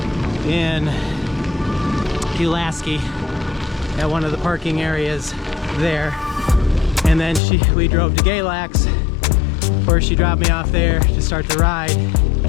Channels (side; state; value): right; drops out; at 7.4 s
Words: in Pulaski at one of the parking areas there. And then we drove to Galax, where she dropped me off there to start the ride.